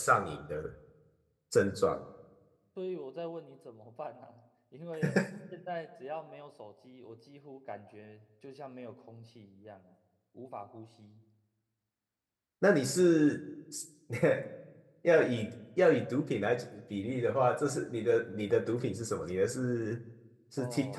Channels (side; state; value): both; identical; correlation 1.00